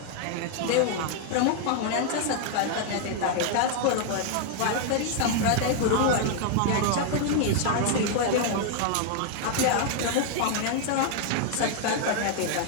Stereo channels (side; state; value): both; different; correlation 0.00